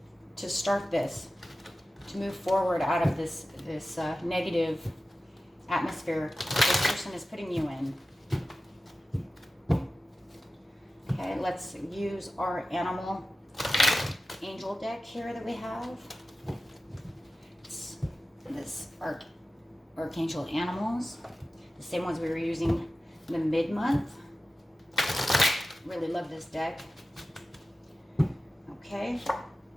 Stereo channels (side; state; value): both; normal; correlation 0.94